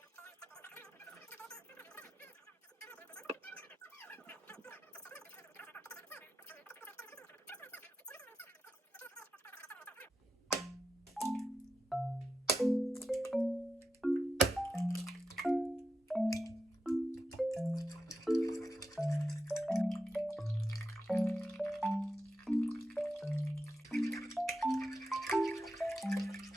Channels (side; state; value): both; normal; correlation 0.89